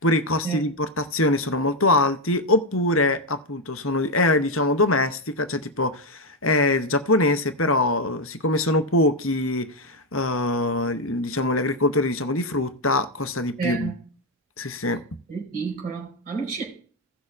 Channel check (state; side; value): normal; both; correlation 0.05